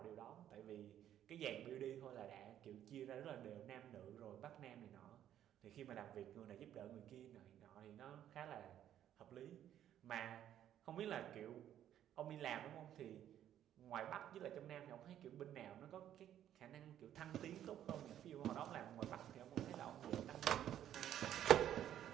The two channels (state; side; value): quieter; left; 11.0 dB